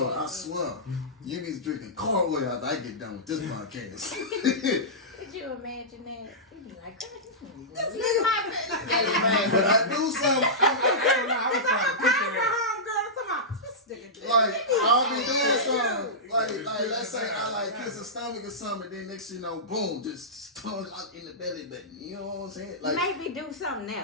I swear. You be drinking cold oil after I get done with this podcast. Could you imagine that? You'd be like, this is my But I do something. I was trying to picture that. Like, I'll be doing something. Like, let's say I like kiss a stomach or something, then next thing you know, boom, just tongue out in the belly button. You know what I'm saying? Like, maybe do something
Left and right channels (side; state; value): both; normal; correlation -0.14